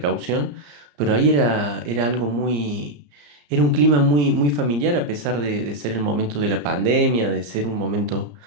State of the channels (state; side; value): late; left; 34 ms